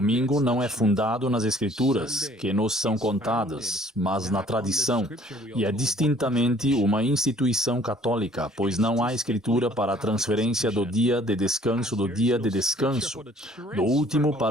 não é fundado nas escrituras, que nos são contadas, mas na tradição. E é distintamente uma instituição católica, pois não há escritura para a transferência do dia de descanso do último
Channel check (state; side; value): normal; both; correlation 0.56